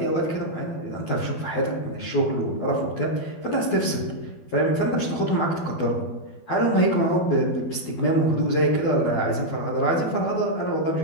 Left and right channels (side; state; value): right; late; 12 ms